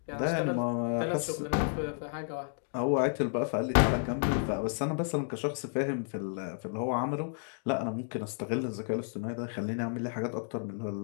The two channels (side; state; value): right; silent; digital silence